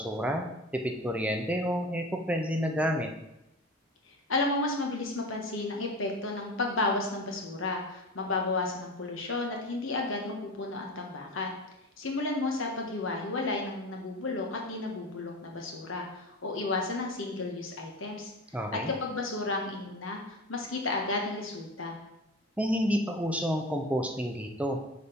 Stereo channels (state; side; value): normal; both; correlation 0.31